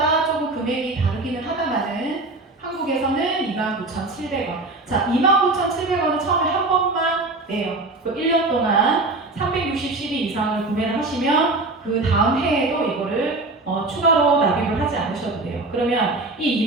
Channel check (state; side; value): quieter; left; 3.1 dB